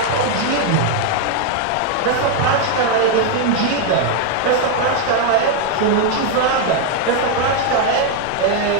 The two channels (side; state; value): both; different; correlation 0.01